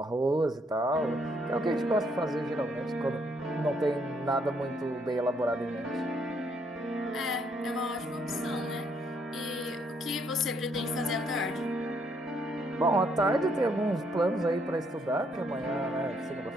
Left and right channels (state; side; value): normal; both; correlation 0.71